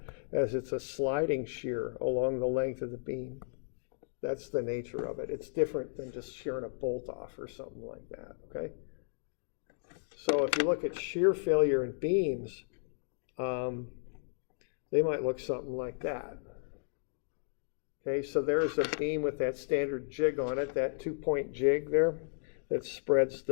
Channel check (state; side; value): silent; right; digital silence